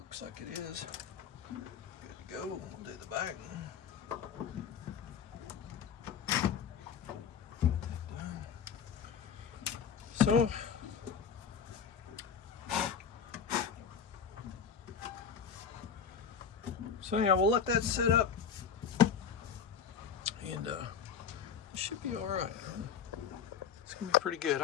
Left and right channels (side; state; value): right; quieter; 7.0 dB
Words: like it is. Good to go. We'll do the back. So anyhow, we'll let that sit up, and it should be all right. It's gonna be pretty good.